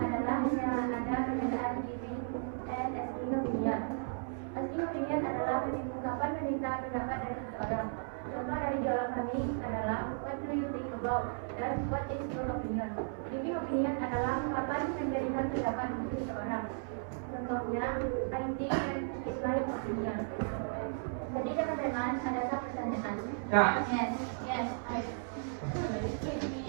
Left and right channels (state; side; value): silent; left; 54 dB below the other